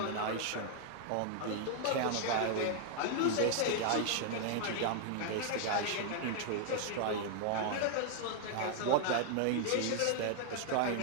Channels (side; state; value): both; different; correlation 0.00